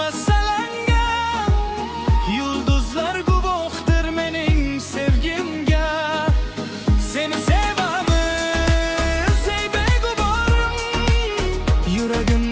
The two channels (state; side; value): identical; both; correlation 1.00